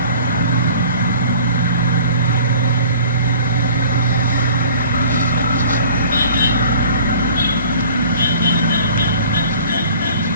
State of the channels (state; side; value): inverted; both; correlation -0.48